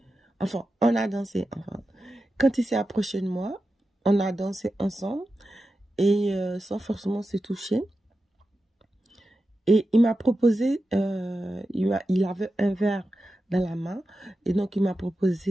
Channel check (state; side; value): normal; both; correlation 0.91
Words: enfin, quand il s'est approché de moi, on a dansé ensemble et sans forcément se toucher. Et il m'a proposé, il avait un verre dans la main, et donc il m'a